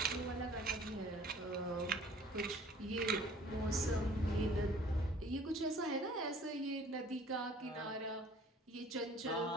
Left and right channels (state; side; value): normal; both; correlation 0.52